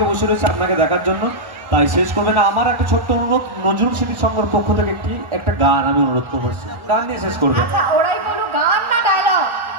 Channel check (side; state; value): left; late; 1.3 ms